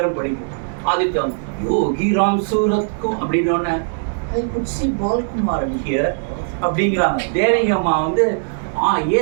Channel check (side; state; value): left; silent; digital silence